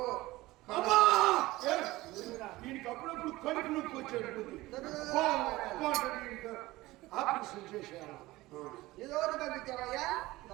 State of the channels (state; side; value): quieter; left; 18.9 dB